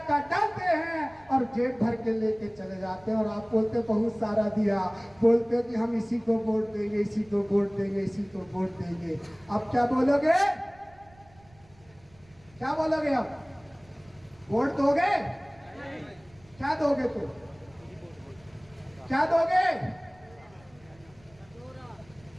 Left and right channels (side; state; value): right; noise; rumble, 28 dB below the sound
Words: डालते हैं और जेब भर के लेके चले जाते हैं। और आप बोलते बहुत सारा दिया, बोलते कि हम इसी को वोट देंगे, इसी को वोट देंगे, इसी को वोट देंगे। अब क्या बोलोगे? क्या बोलोगे? अब वोट दोगे? क्या दोगे? तो क्या दोगे?